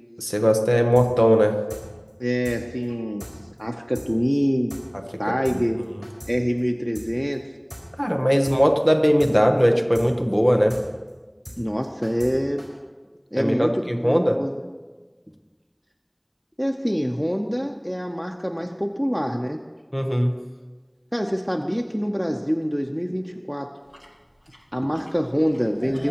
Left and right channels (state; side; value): identical; both; correlation 1.00